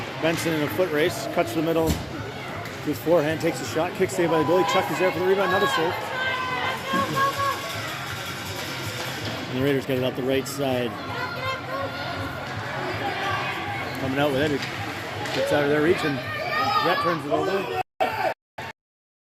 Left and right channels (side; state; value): both; identical; correlation 1.00